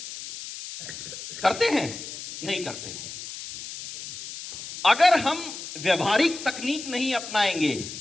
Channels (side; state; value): left; noise; hiss, 10 dB below the sound